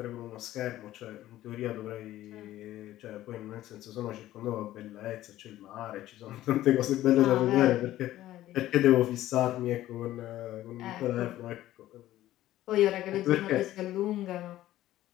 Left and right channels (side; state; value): right; quieter; 14.4 dB